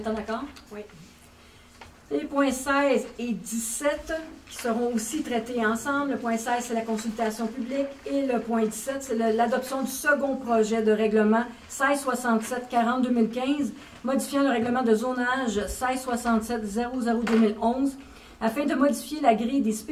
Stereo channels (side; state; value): both; identical; correlation 1.00